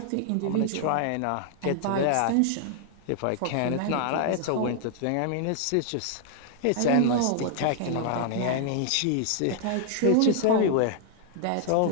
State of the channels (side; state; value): both; different; correlation 0.00